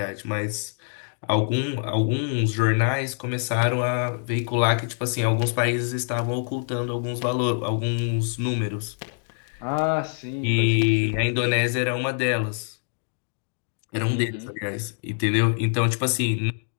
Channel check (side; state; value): right; silent; 62 dB below the other